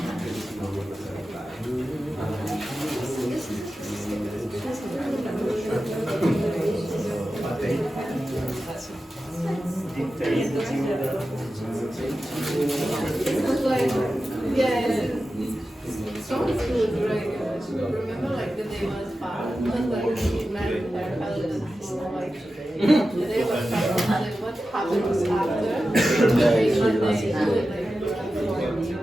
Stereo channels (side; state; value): both; normal; correlation 0.93